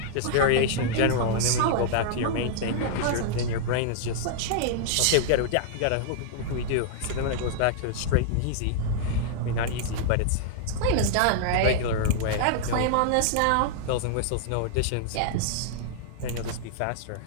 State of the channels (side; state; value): both; different; correlation -0.01